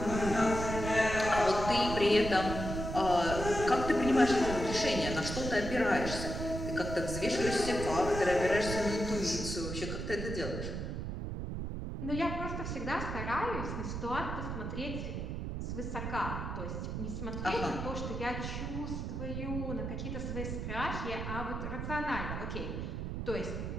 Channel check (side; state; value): right; noise; rumble, 4 dB below the sound